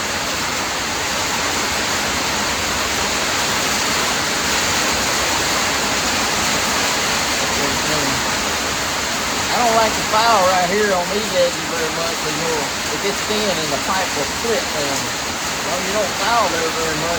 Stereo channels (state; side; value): identical; both; correlation 1.00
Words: I don't like the file right here on these edges very much because it gets thin and the pipe will split them. Well, you don't file there very